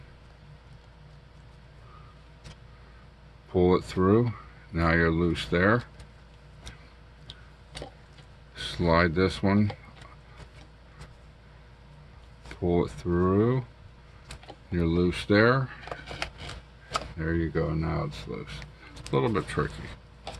pull it through. Now you're loose there. Slide this one, pull it through, you're loose there. There you go, now it's loose. A little bit tricky.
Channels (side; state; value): both; identical; correlation 1.00